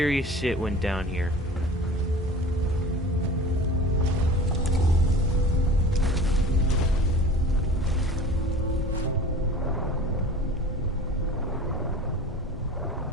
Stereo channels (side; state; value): both; normal; correlation 0.40